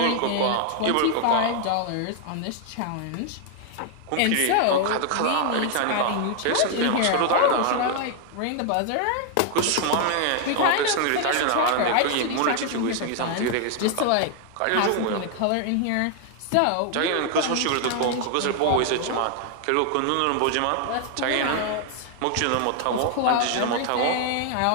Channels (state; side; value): different; both; correlation 0.00